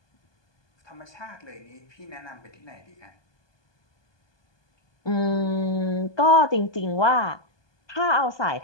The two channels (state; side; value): late; right; 1.2 ms